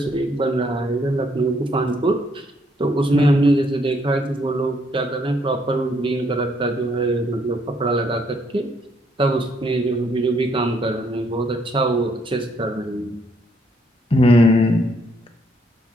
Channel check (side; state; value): both; normal; correlation 0.70